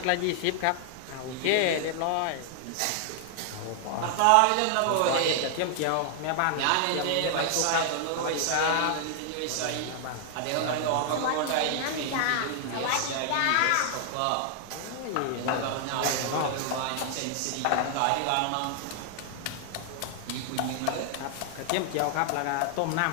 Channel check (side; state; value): both; different; correlation 0.00